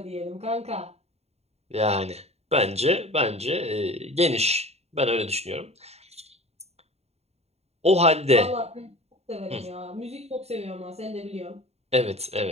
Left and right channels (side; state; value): left; late; 0.30 ms